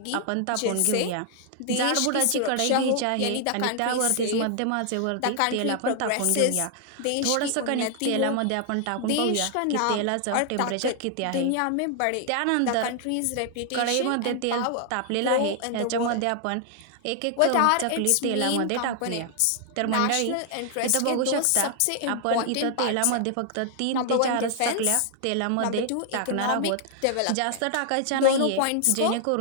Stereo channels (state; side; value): different; both; correlation 0.00